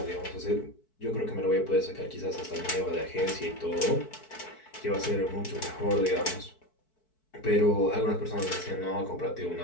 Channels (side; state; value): right; late; 4.6 ms